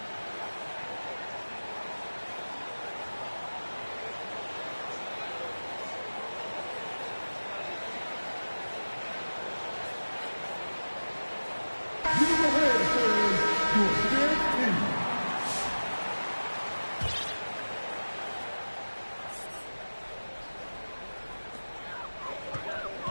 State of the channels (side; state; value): both; inverted; correlation -1.00